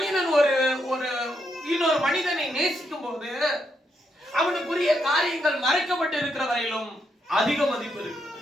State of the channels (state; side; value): normal; both; correlation 0.79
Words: ஒரு இன்னொரு மனிதனை நேசிக்கும் போது அவனுக்குரிய காரியங்கள் மறைக்கப்பட்டு இருக்கிற வரையிலும் அதிக மதிப்பு இருக்கிறது.